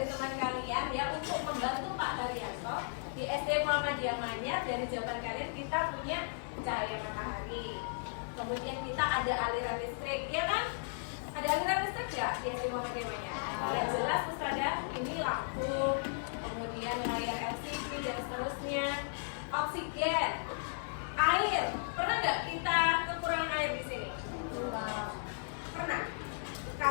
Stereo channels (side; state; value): right; silent; 54 dB below the other